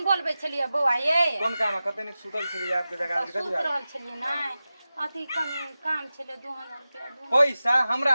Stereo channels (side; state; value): both; inverted; correlation -0.95